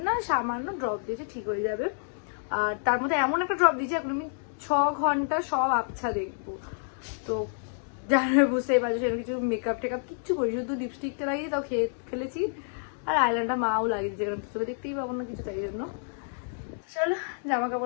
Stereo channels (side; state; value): right; silent; digital silence